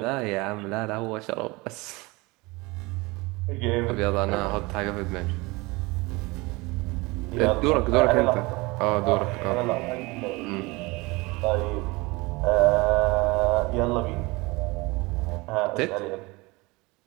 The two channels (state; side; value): quieter; left; 24.0 dB